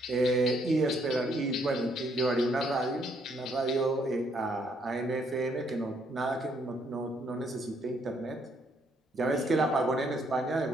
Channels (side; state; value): both; normal; correlation 0.70